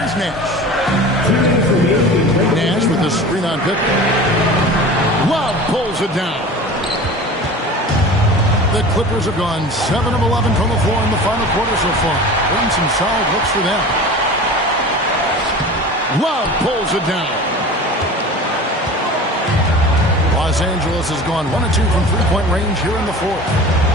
Nash. Nash with the screen on Pippen. Love pulls it down. The Clippers have gone 7 of 11 from the floor in the final quarter so far. Been some solid looks for them. Love pulls it down. Los Angeles has gone 1 of 2 from three-point range here in the fourth.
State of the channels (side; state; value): both; normal; correlation 0.37